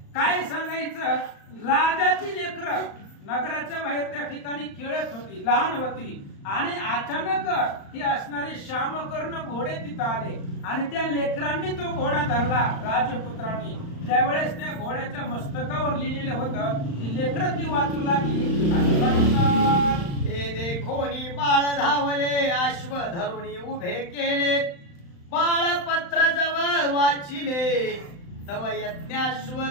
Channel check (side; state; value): right; late; 35 ms